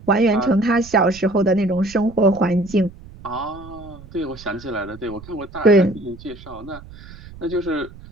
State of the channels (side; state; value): right; noise; rumble, 18 dB below the sound